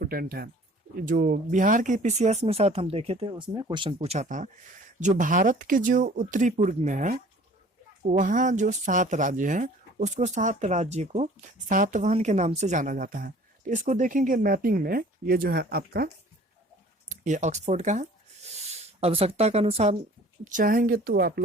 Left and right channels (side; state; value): both; normal; correlation 0.50